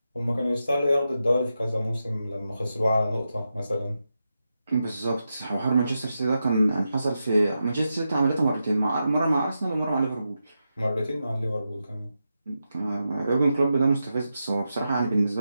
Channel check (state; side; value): inverted; both; correlation -0.88